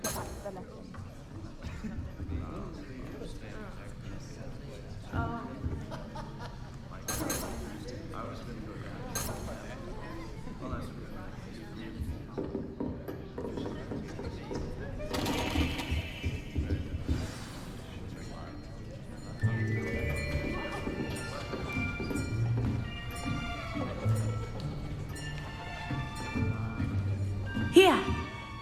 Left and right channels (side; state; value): both; identical; correlation 1.00